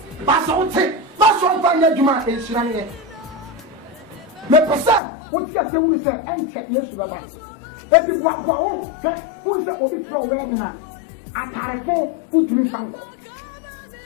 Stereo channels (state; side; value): drops out; right; at 5.0 s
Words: but I would say, that's one fine Yajuma is running. My person, what's your saying, sir, and check yes, Baba. Et the Guapo, who is a bit from Wedina. At Tarafo, put me Fanko.